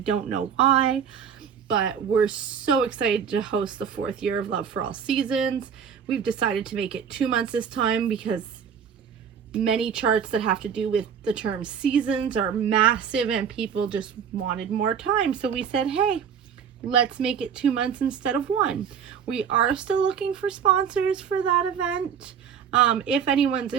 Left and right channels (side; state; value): left; quieter; 7.5 dB